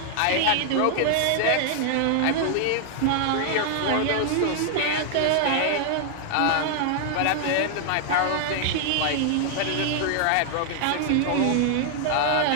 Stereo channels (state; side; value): different; both; correlation 0.00